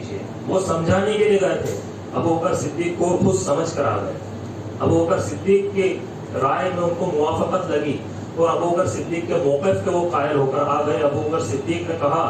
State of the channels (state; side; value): identical; both; correlation 1.00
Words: وہ سمجھانے کے لیے گئے تھے، ابو بکر صدیق کو خود سمجھ کر آ گئے، ابو بکر صدیق کے رائے میں ان کو موافقت لگی، اور ابو بکر صدیق کے موقف کے وہ قائل ہو کر آ گئے۔ ابو بکر صدیق نے کہا